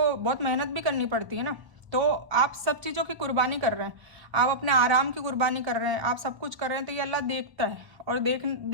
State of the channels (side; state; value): left; late; 1.2 ms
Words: बहुत मेहनत भी करनी पड़ती है ना। तो आप सब चीज़ों की कुर्बानी कर रहे हैं, आप अपने आराम की कुर्बानी कर रहे हैं, आप सब कुछ कर रहे हैं, तो ये अल्लाह देखता है, और